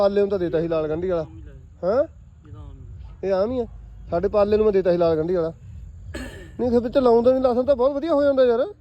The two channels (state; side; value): identical; both; correlation 1.00